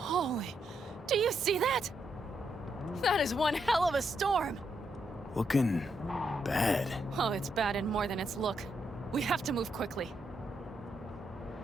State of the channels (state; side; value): normal; both; correlation 0.79